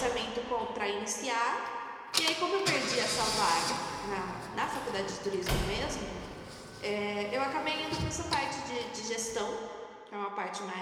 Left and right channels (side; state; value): both; identical; correlation 1.00